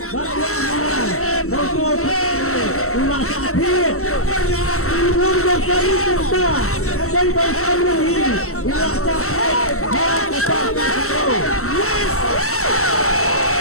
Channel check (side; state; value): right; late; 0.63 ms